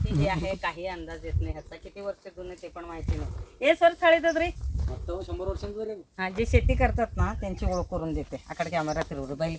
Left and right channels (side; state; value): both; identical; correlation 1.00